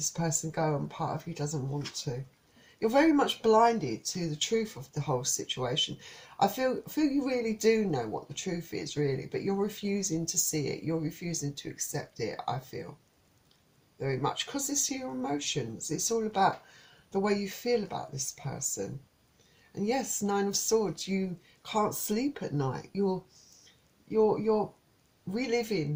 person go, and part of you doesn't want to. You're very much blinded to the truth of the whole situation. I feel you really do know what the truth is, really, but you're refusing to see it. You're refusing to accept it, I feel, very much, because it's your emotions. It's all about the way you feel about this person. And yes, Nine of Swords, you can't sleep at night. You're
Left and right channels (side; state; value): both; identical; correlation 1.00